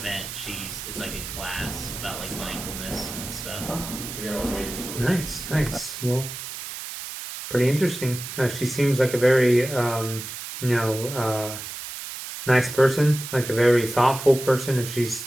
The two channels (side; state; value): right; noise; hiss, 9 dB below the sound